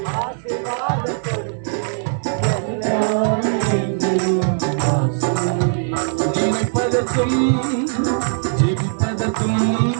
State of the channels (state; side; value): silent; left; 63 dB below the other